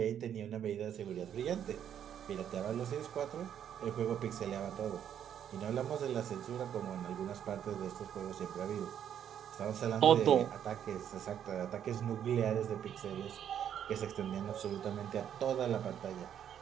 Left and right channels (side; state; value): left; quieter; 9.4 dB